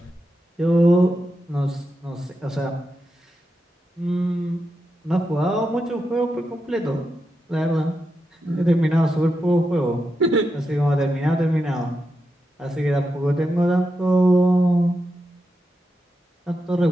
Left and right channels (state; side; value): normal; both; correlation 0.87